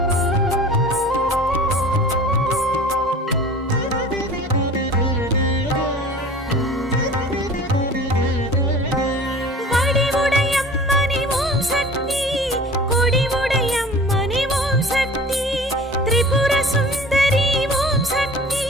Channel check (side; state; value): both; normal; correlation 0.42